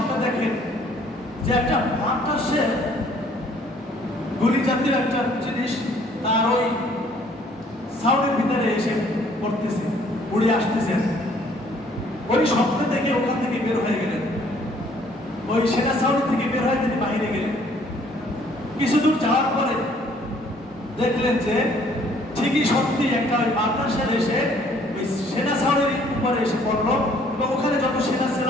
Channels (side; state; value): both; normal; correlation 0.60